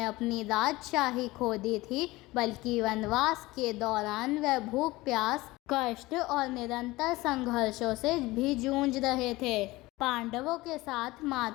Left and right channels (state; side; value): quieter; right; 20.0 dB